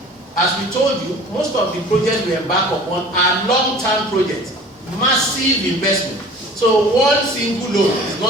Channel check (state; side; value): normal; both; correlation 0.44